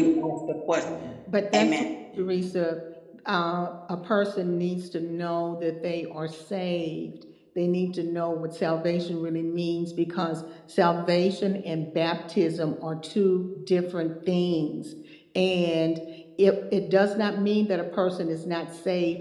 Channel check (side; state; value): both; identical; correlation 1.00